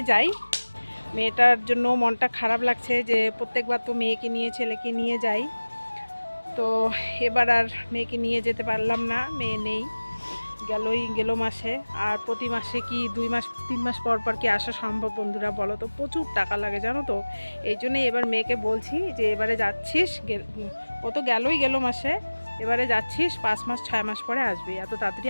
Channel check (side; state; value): both; inverted; correlation -1.00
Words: যাই। মেয়েটার জন্য মনটা খারাপ লাগছে যে প্রত্যেকবার তো মেয়েকে নিয়ে ছেলেকে নিয়ে যাই। তো এবার আর মেয়েকে নিয়ে যেতে পারলাম না, মেয়ে নেই, গেল মাসে। আর প্রতি মাসে কি 2 মাস 3 মাস পর পর কি আসা সম্ভব বন্ধুরা, বলো তো? প্রচুর টাকা লাগে জানো তো। এই জন্যই এবার মেয়েকে বলছি যে এবারে যাচ্ছিস, ও তো গেল মাসে, এবারে যাচ্ছিস 5 মাস 6 মাস পরে আসবি, এত তাড়াতাড়ি